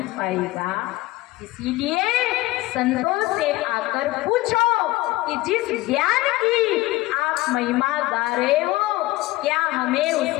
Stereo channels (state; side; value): quieter; right; 19.1 dB